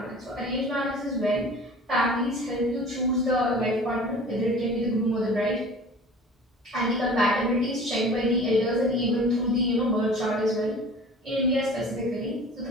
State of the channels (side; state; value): both; normal; correlation 0.43